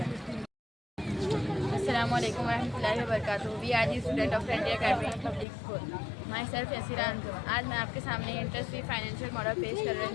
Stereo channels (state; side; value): drops out; right; at 5.5 s